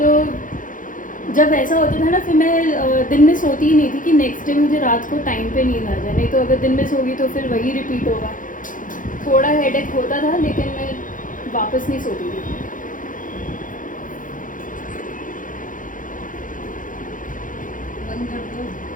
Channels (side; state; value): right; late; 0.38 ms